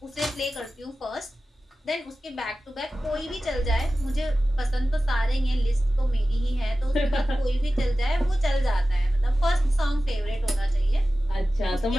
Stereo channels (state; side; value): normal; both; correlation 0.95